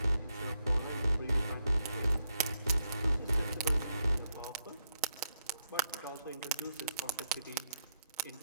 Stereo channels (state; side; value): inverted; both; correlation -0.80